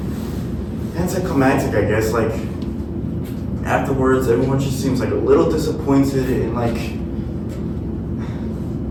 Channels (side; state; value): both; identical; correlation 1.00